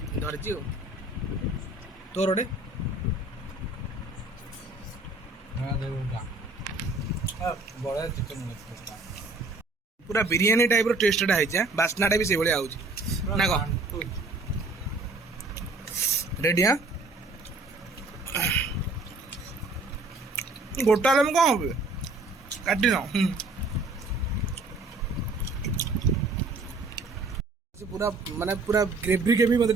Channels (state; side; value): quieter; left; 3.2 dB